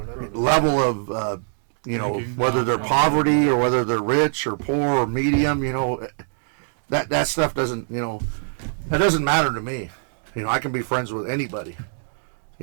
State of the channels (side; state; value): left; silent; 63 dB below the other